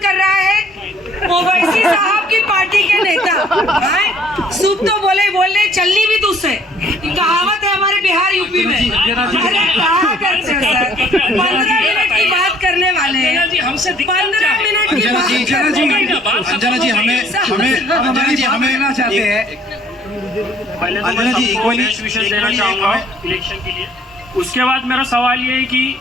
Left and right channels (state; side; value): normal; both; correlation 0.60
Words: रहा है? ओवैसी साहब की पार्टी के नेता। सूप तो बोले चलनी भी दूसरे। कहावत है हमारे बिहार यूपी में। अरे कहा करते हो सर, 15 मिनट की बात करने वाले हैं। जी हमसे 15 मिनट की बात अंजना जी हमें लेना चाहते हैं। अंजना जी विषय देना चाहूंगा इलेक्शन के लिए। उसके बाद मेरा सवाल ये है कि